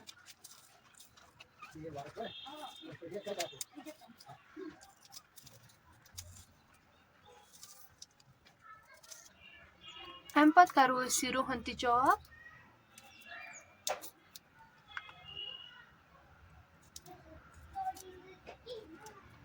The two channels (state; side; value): identical; both; correlation 1.00